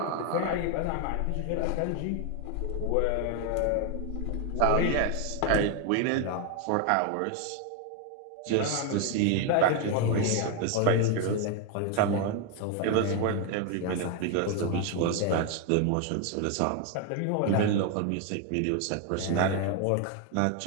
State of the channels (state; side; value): different; both; correlation 0.01